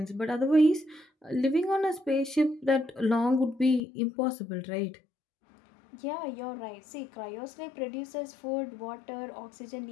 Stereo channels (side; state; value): right; drops out; at 3.8 s